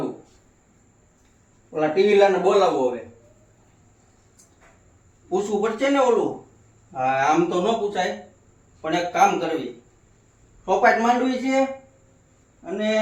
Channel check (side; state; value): both; identical; correlation 1.00